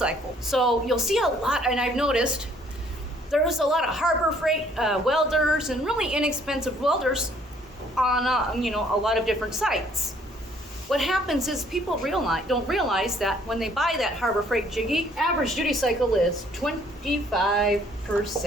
So you'll see a lot, and I've noticed there's a lot of Harbor Freight welders and really inexpensive welders on a lot of different sites. What happens is people don't realize that when they buy that Harbor Freight jiggy, average duty cycle is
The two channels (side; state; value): both; normal; correlation 0.61